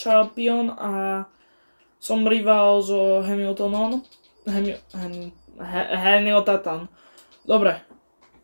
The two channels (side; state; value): both; inverted; correlation -1.00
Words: a som rival so Hamiltonom. Hamilton. Dobre.